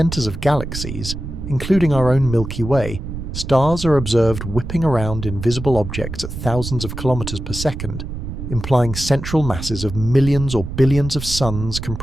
of galaxies, including our own Milky Way, stars are observed whipping around invisible objects at thousands of kilometers per second, implying central masses of millions or billions of suns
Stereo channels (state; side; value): noise; right; rumble, 7 dB below the sound